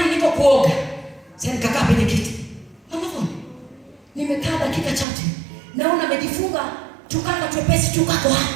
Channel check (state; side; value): drops out; left; at 5.1 s